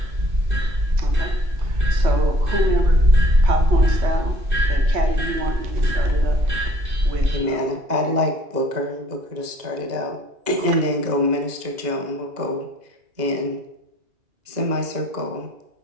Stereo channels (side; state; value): left; late; 2.0 ms